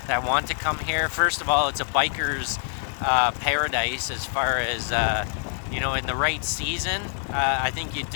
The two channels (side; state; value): right; silent; 62 dB below the other